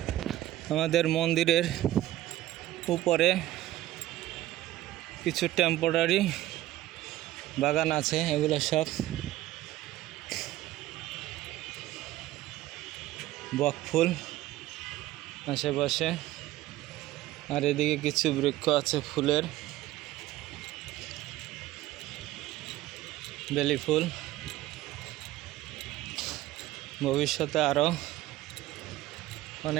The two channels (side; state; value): left; quieter; 15.4 dB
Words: আমাদের মন্দিরের উপরে কিছু টেম্পোরারি বাগান আছে, এগুলো সব বকফুল আশেপাশে, আর এদিকে কিছু বৃক্ষ আছে ফুলের, বেলি ফুল। ভবিষ্যতে আরও